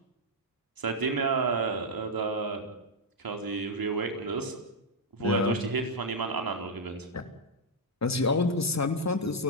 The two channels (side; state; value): both; normal; correlation -0.02